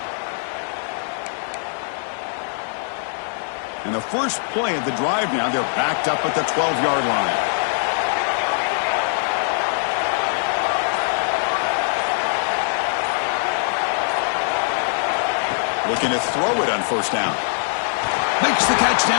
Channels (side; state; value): right; silent; digital silence